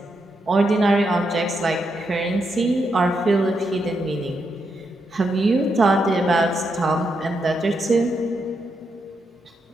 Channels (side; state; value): both; normal; correlation 0.82